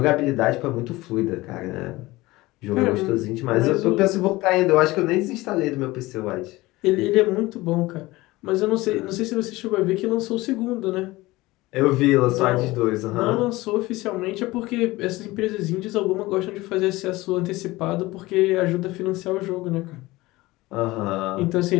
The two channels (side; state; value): right; quieter; 19.8 dB